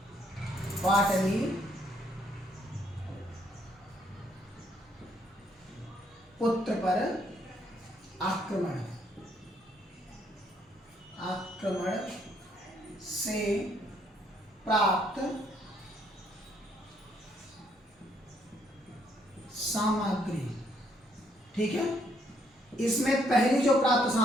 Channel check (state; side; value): normal; both; correlation 0.70